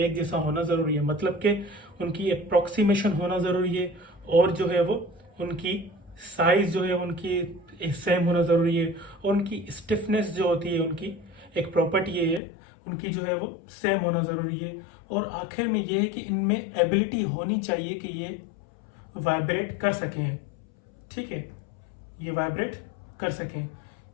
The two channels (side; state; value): right; drops out; at 12.4 s